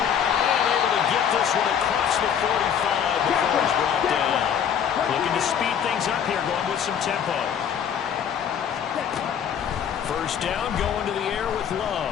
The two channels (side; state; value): right; quieter; 8.3 dB